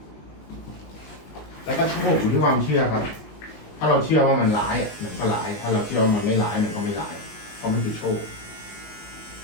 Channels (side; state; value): right; late; 19 ms